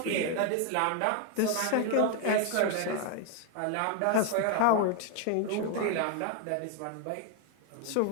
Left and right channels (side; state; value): both; different; correlation 0.01